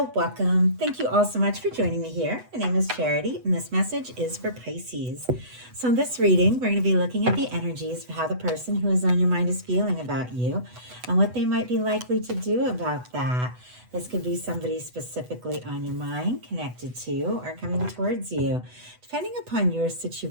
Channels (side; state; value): left; late; 8.1 ms